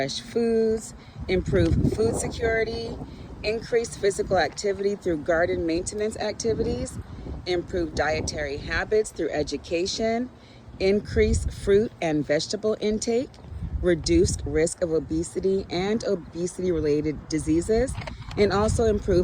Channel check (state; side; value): identical; both; correlation 1.00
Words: foods, improve food security, increase physical activity through garden maintenance activities, improve dietary habits through education, increase fruit and vegetable intake, reduced risk of obesity and obesity-related diseases, and also